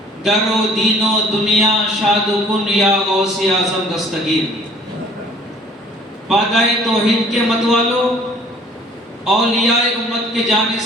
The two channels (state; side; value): normal; both; correlation 0.54